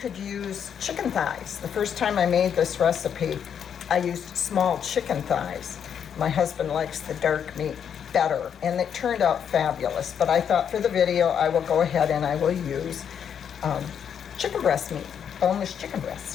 use chicken thighs. The first time I made this recipe, I used small chicken thighs. My husband likes the dark meat better, and it turned out fabulous. But I thought for the video, I will go ahead and I will use chicken breast meat, boneless chicken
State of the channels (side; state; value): right; quieter; 8.1 dB